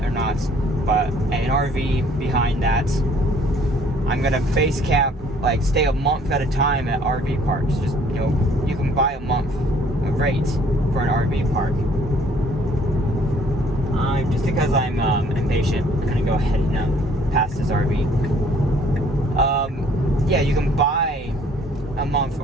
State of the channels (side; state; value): both; normal; correlation 0.59